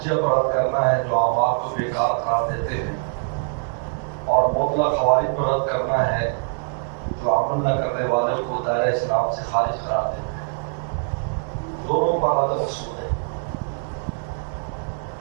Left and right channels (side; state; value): left; silent; digital silence